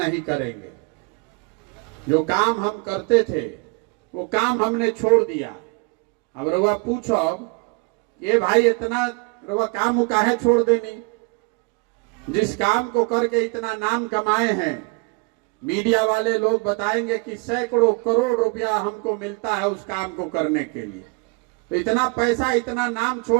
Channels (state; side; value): quieter; left; 29.2 dB